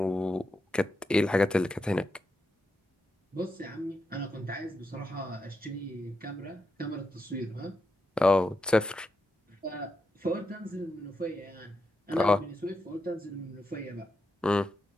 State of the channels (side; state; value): both; normal; correlation 0.86